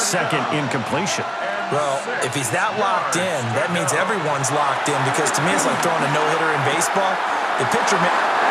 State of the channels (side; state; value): both; identical; correlation 1.00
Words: second incompletion. Well, if he's that locked in, that means everyone's locked in, because to me it's like throwing a no-hitter in baseball. The pitcher...